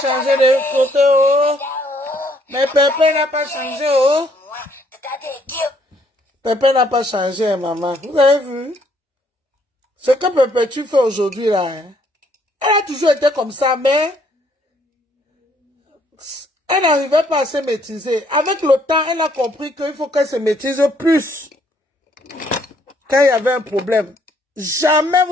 de côté, oh. Mais Pépé n'a pas changé, oh. Pépé n'a pas changé, maman. Vous avez vu? Ce que Pépé tu fais aujourd'hui, là, hein? Elle a toujours été comme ça, mais elle n'arrivait pas à se maîtriser. Avec le temps, elle a compris qu'il faut qu'elle se maîtrise plus. Quand il y avait un problème. Jamais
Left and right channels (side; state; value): both; normal; correlation 0.67